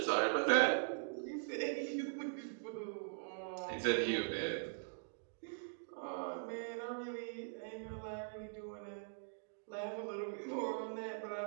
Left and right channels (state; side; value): silent; left; digital silence